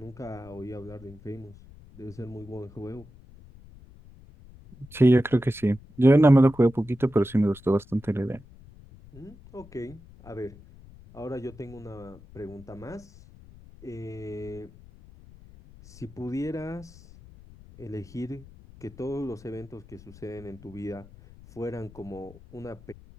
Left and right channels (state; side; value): noise; left; rumble, 21 dB below the sound